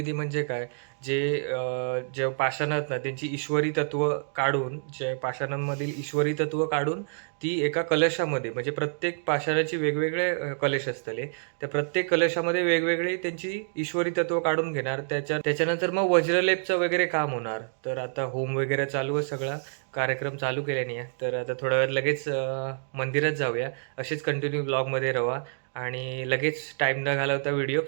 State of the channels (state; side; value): silent; left; digital silence